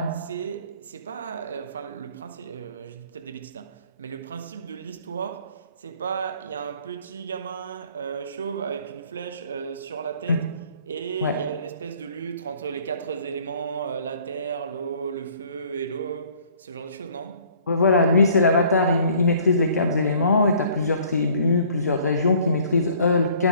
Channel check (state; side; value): inverted; both; correlation -0.57